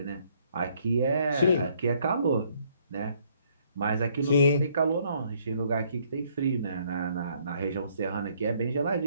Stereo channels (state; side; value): inverted; both; correlation -0.66